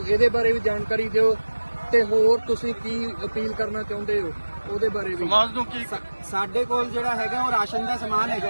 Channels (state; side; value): inverted; both; correlation -1.00